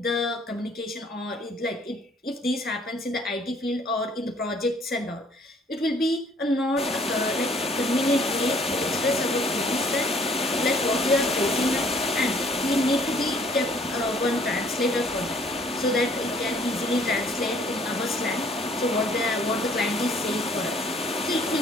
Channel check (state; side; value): normal; both; correlation 0.60